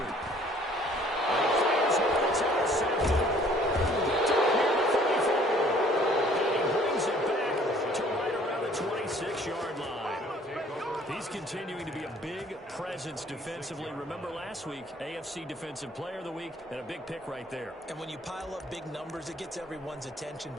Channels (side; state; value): both; normal; correlation 0.57